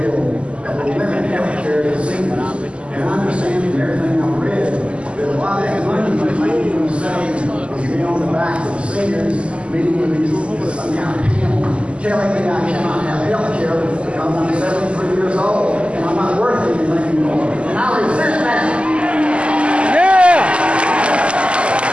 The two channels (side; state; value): left; late; 0.055 ms